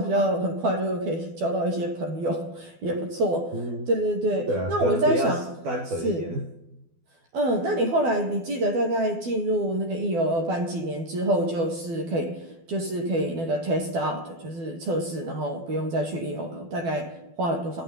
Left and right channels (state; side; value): late; left; 12 ms